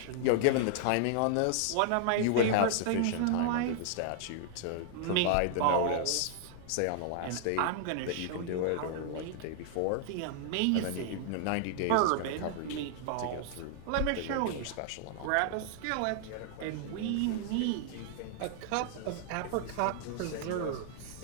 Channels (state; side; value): different; both; correlation 0.00